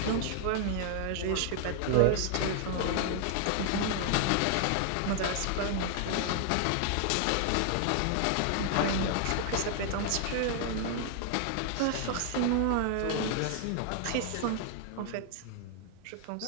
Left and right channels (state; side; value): different; both; correlation 0.00